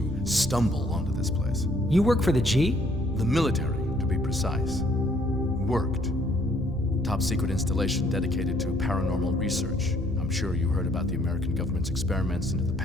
stumble onto this place. You work for the G? The military, to be precise. Worked. Top secret installation dedicated to paranormal research. I'm sure you heard about the American government's experiments into the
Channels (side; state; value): both; normal; correlation 0.64